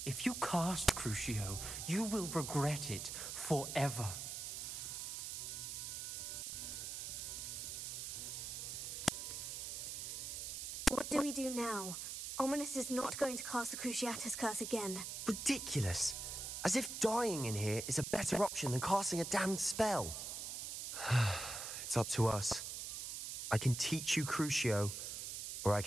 If you cast Crucio, you will regret it forever. What do we do now? Ominous is not going to cast the Cruciatus curse again. Ridiculous. As if dying in here is a better option than casting a damned spell. It's up to us. I can teach you Crucio, or I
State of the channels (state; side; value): noise; right; hiss, 5 dB below the sound